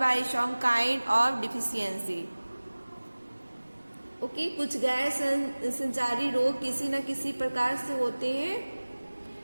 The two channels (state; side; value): inverted; both; correlation -1.00